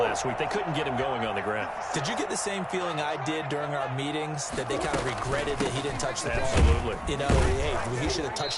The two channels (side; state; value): both; identical; correlation 1.00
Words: week. They couldn't get him going on the ground. Did you get the same feeling I did during our meetings, that they kind of regretted that he didn't touch the ball? Absolutely. You know, hey, he should have